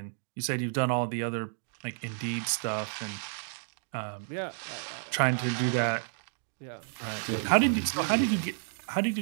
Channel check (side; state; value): left; silent; digital silence